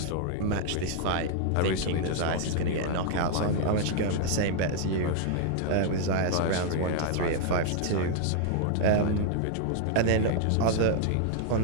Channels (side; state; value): both; different; correlation 0.00